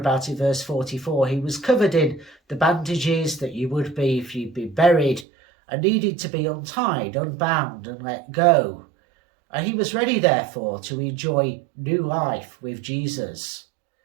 in verse 44, he was covered in the bandages that you would be if you'd been buried, and needed to be untied, unbound, and let go. And he was ready, therefore, to enjoy new life with Jesus.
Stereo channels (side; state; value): left; drops out; at 5.2 s